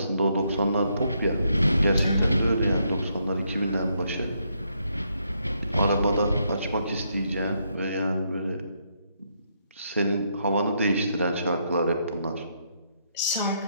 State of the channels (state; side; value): inverted; both; correlation -0.76